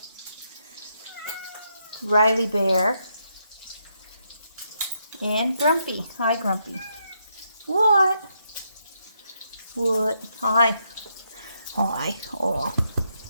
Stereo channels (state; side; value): inverted; both; correlation -0.79